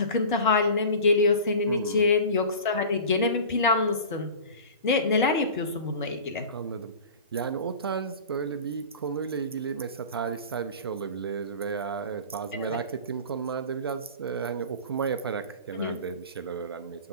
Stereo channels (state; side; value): inverted; both; correlation -0.36